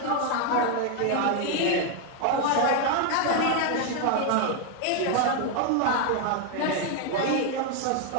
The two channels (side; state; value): both; different; correlation 0.01